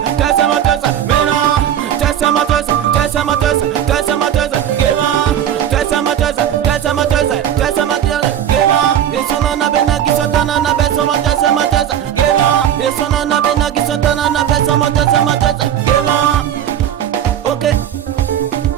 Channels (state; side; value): quieter; left; 10.1 dB